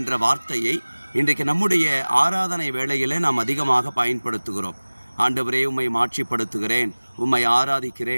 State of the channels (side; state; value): both; inverted; correlation -1.00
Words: வார்த்தையை இன்றைக்கு நம்முடைய ஆராதனை வேளையிலே நாம் அதிகமாக பயன்படுத்துகிறோம். ஆண்டவரே, உம்மை மாட்சிப்படுத்துகிறேன், உம்மை